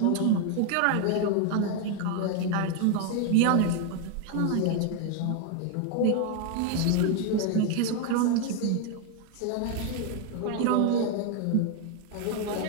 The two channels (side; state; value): both; different; correlation 0.01